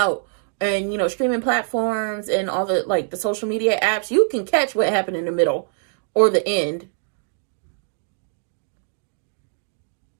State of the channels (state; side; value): silent; left; digital silence